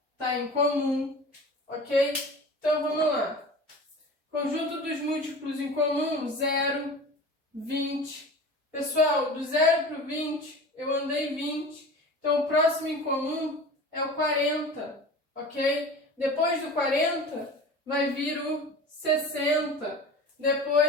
está em comum, ok? Então, vamos lá. Conjunto dos múltiplos em comum, 0, 20. Pessoal, do 0 para o 20, eu andei 20. Então, o próximo em comum é o 40, ok? Depois do 40, vai vir o 60.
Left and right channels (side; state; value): both; normal; correlation 0.36